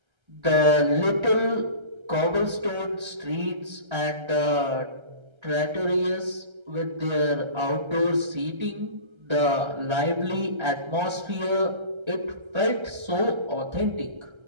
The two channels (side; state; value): left; late; 1.3 ms